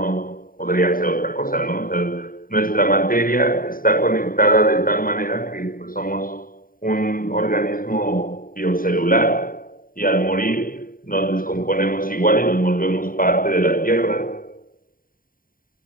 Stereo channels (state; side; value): late; right; 0.41 ms